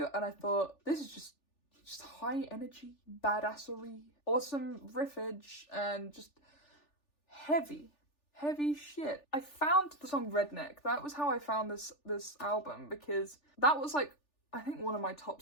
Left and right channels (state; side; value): late; right; 3.4 ms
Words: and I thought, this is just high energy, badassery, awesome riffage, and just heavy shit. I found the song Redneck. That was how I found this album, because that was like, I think one of my top